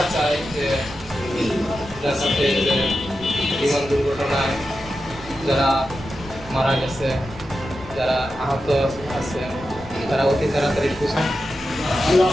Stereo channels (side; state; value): left; noise; rumble, 18 dB below the sound